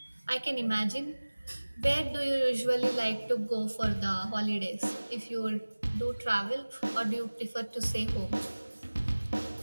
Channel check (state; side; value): inverted; both; correlation -1.00